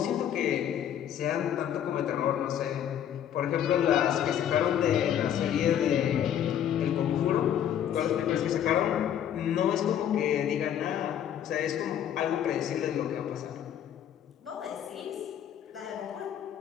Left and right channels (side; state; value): right; quieter; 9.9 dB